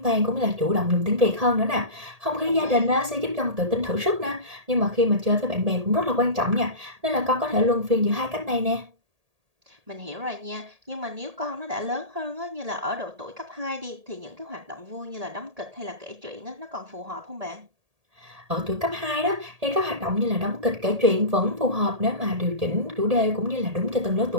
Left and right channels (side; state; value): left; late; 1.8 ms